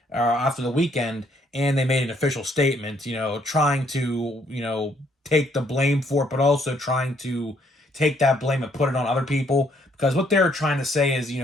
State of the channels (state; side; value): normal; both; correlation 0.68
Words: after the weekend, and they made an official statement, trying to, take the blame for it, but also trying to take that blame and put it on other people. Because what they're trying to say is,